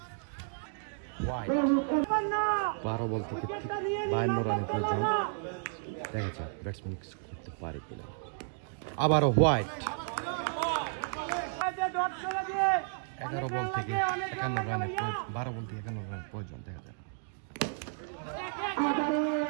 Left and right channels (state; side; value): silent; left; digital silence